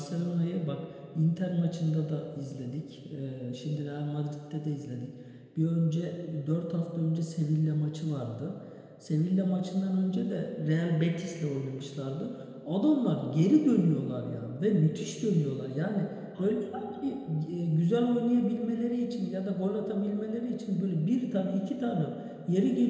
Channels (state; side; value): identical; both; correlation 1.00